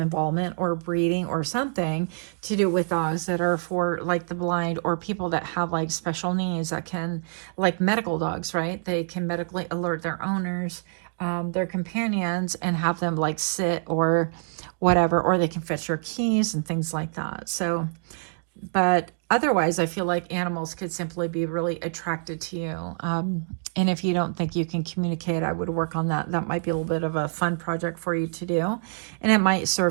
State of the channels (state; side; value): silent; left; digital silence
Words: or breeding or something to do with dogs that are for the blind, or people that have special needs that can, medical dogs, right? They can medically alert their owners, their companions, and have them sit or whatever, or they can fetch your keys and things like that. So, but otherwise, I feel like animals could simply be really attracted to you. And if you don't think you can communicate, I would work on that. That might be a little bit of a fun project for you to do. And it might